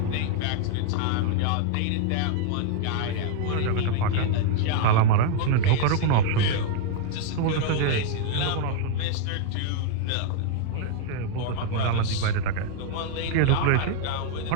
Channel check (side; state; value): both; different; correlation 0.00